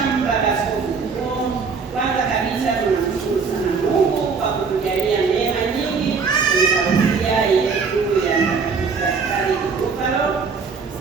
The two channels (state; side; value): quieter; left; 5.2 dB